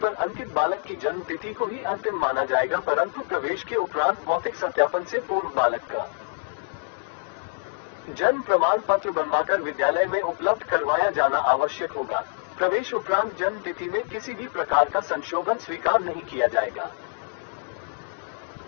अंकित बालक की जन्म तिथि को ही अंतिम माना जाएगा, परंतु प्रवेश के उपरांत भौतिक सत्यापन से पूर्व बालक का जन्म प्रमाण पत्र बनवाकर विद्यालय में उपलब्ध करवाया जाना आवश्यक होगा। प्रवेश उपरांत जन्म तिथि में किसी भी प्रकार का संशोधन स्वीकार नहीं किया जाएगा।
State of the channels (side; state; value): right; silent; digital silence